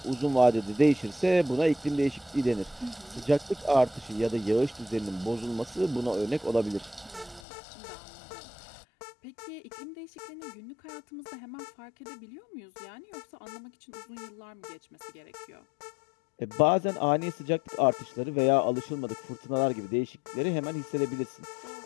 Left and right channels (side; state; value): right; drops out; at 7.4 s